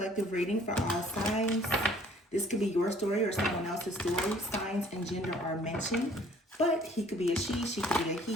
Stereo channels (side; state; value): both; normal; correlation 0.57